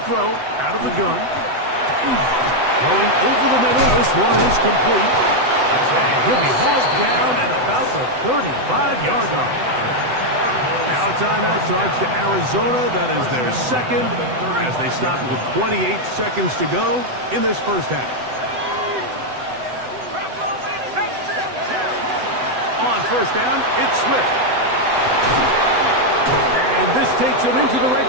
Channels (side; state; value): left; late; 7.9 ms